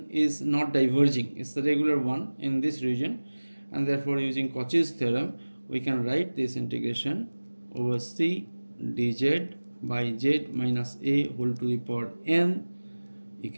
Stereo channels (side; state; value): both; inverted; correlation -1.00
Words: is not diverging, it's the regular one in this region, and therefore using Cauchy's theorem we can write this integration over C dz by z minus a whole to the power n